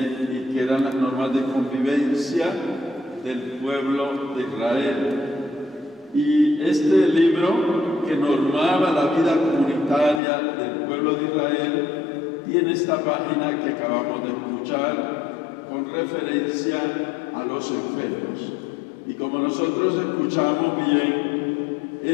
y que eran las normas de convivencia del pueblo de Israel. Y este libro que normaba la vida comunitaria del pueblo de Israel tiene esta página que acabamos de escuchar con referencia a los enfermos. Y como nosotros escuchamos bien,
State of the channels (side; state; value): right; drops out; at 10.2 s